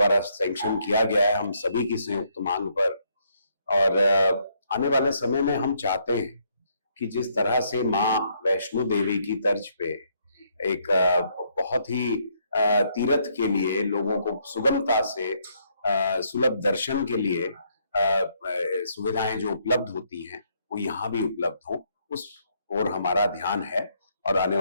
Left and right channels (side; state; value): both; inverted; correlation -0.71